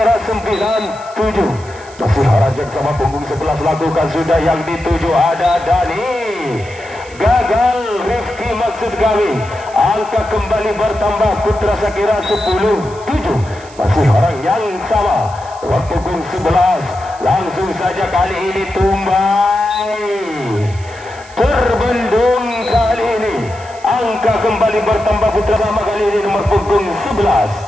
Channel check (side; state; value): right; noise; hiss, 22 dB below the sound